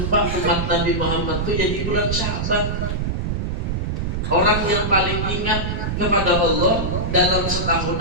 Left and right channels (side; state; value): right; noise; rumble, 1 dB below the sound